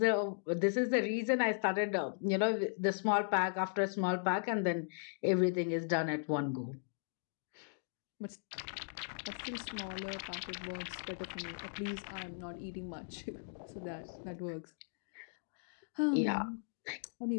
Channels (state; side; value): silent; right; digital silence